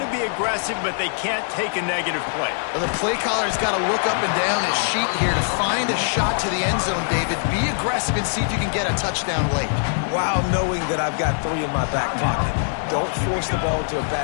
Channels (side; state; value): right; silent; digital silence